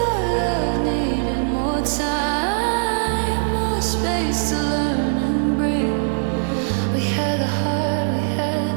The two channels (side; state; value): left; silent; 65 dB below the other